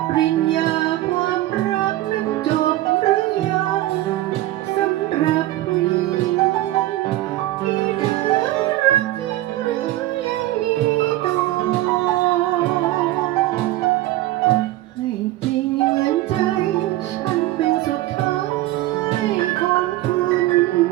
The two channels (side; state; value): left; quieter; 16.1 dB